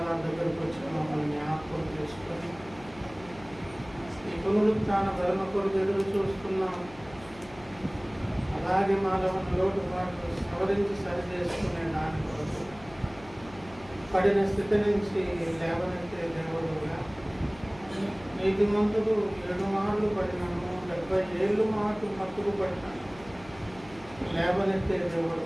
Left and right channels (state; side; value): noise; left; hum, 20 dB below the sound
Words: దగ్గరకు వచ్చిన మమ్మల్ని జ్ఞాపకం చేసుకొని ఈ పునరుత్థాన ధర్మ కొరకు ఎదురు చూస్తున్నాం. అలాగే మాలో లోటుపాట్లు సవరించి సరి చేసుకునే దాని కొరకు పడిన స్థితి నుంచి లేవనెత్తే దేవుడుగా నీతి మంతులు 7 మార్లు పడినాము, 70 ఏళ్ళు మాకు మత్తుకు పడినాను. లేవనెత్తే దేవుడు